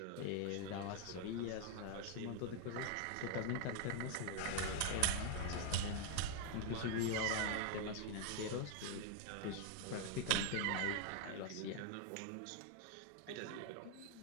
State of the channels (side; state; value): both; different; correlation 0.00